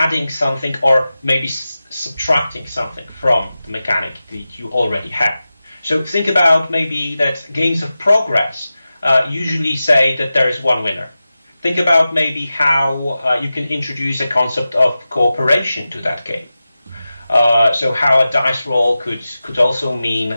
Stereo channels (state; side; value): inverted; both; correlation -0.94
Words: something or maybe subtracting something from the mechanic that you already have. So think about maybe that games of progress usually say that there is one winner. Think about maybe how you can introduce a concept of cooperation to that game. So how a dice roll could also mean